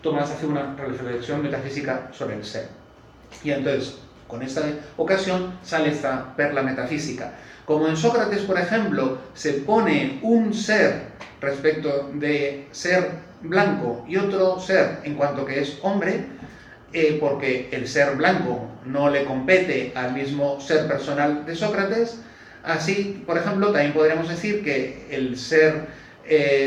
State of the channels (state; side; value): identical; both; correlation 1.00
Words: Tomás hace una reflexión metafísica sobre el ser. Y entonces, con esta ocasión, sale esta perla metafísica. Como en Sócrates, por ejemplo, se pone un ser respecto de ser blanco y otro ser en cuanto que es hombre, porque el ser blanco no le compete al mismo ser personal de Sócrates. Así, por ejemplo, también podríamos decir que el ser